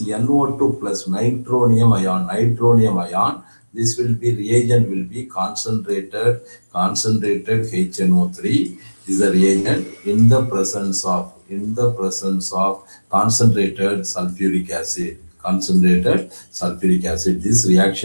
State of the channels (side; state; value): both; inverted; correlation -1.00